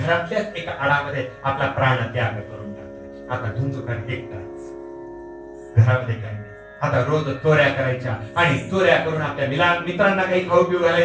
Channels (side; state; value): both; identical; correlation 1.00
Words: घरातल्याच एका आडामध्ये आपला प्राण त्याग करून टाकते. आता धुंदुकार एकटाच, घरामध्ये काही नाही. आता रोज चोऱ्या करायच्या आणि चोऱ्या करून आपल्या मित्रांना काही खाऊ पिऊ